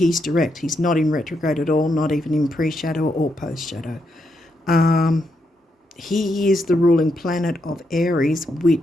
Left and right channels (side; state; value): both; normal; correlation 0.80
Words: direct. He's not in retrograde at all, not even in pre-shadow or post-shadow. He is the ruling planet of Aries,